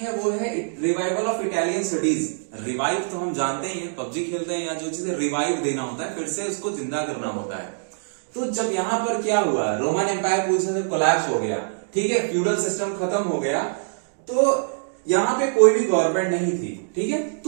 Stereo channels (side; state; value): left; silent; digital silence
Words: वो है revival of Italian studies. Revive तो हम जानते ही हैं, पबजी खेलते हैं या जो चीजें रिवाइव देना होता है, फिर से उसको जिंदा करना होता है। तो जब यहां पर क्या हुआ, रोमन एम्पायर पूरी तरह से कोलैप्स हो गया, ठीक है, फ्यूडल सिस्टम खत्म हो गया, तो यहां पे कोई भी गवर्नमेंट नहीं थी। ठीक है,